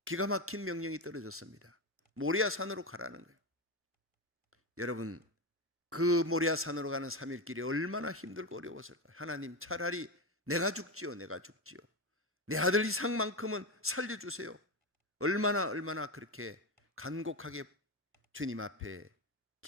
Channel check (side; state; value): both; normal; correlation 0.16